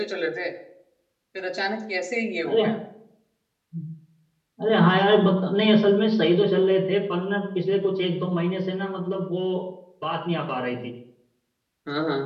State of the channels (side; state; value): both; identical; correlation 1.00